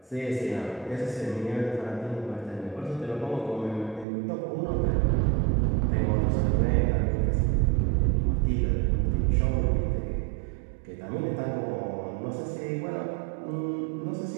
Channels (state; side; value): drops out; left; at 4.0 s